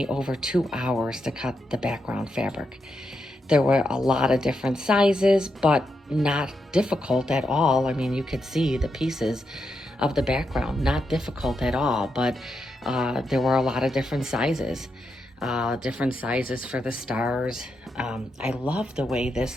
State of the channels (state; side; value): normal; both; correlation 0.83